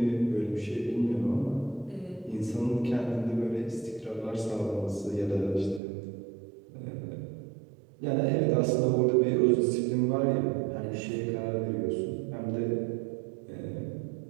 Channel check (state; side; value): drops out; left; at 5.8 s